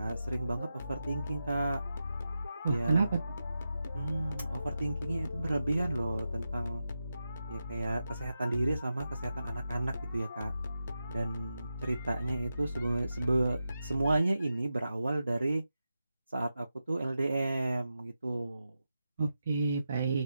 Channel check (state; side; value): inverted; both; correlation -0.90